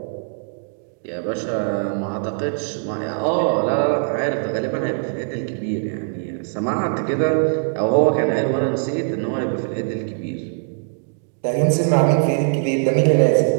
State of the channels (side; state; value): left; silent; digital silence